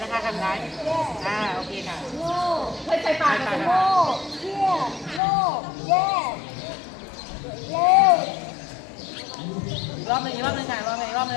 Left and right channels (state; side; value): drops out; right; at 5.2 s